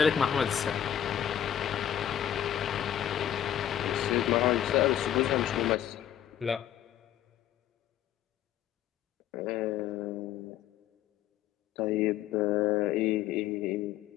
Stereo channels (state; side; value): quieter; right; 10.6 dB